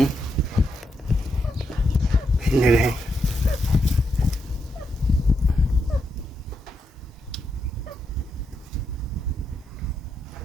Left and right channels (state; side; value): normal; both; correlation 0.82